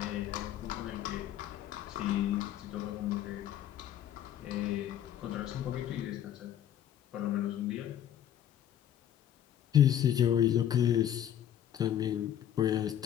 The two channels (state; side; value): quieter; right; 10.7 dB